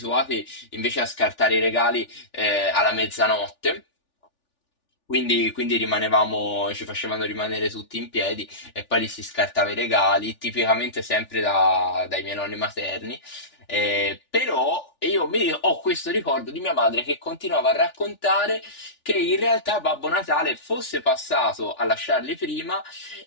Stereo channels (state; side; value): late; right; 3.4 ms